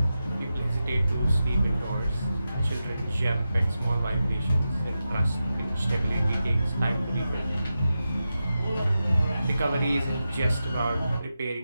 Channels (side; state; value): both; inverted; correlation -0.90